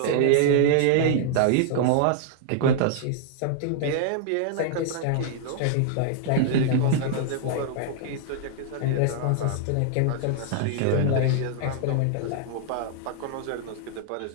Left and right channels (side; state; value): both; different; correlation -0.01